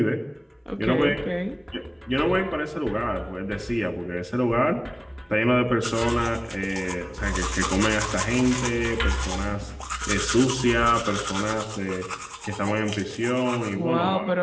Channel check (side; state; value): both; identical; correlation 1.00